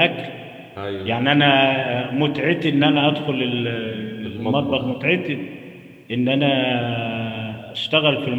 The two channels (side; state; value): both; identical; correlation 1.00